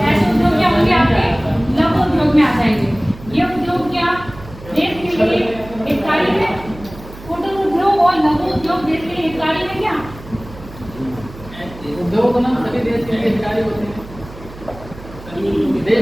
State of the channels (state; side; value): noise; right; hum, 17 dB below the sound